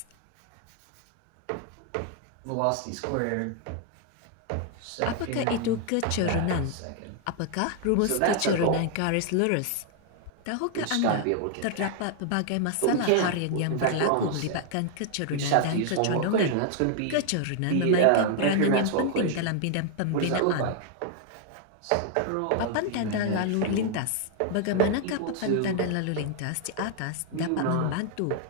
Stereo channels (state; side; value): different; both; correlation 0.00